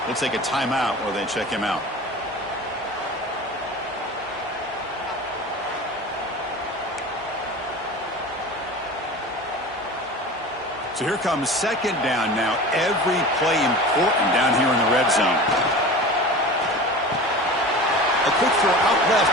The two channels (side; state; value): both; normal; correlation 0.35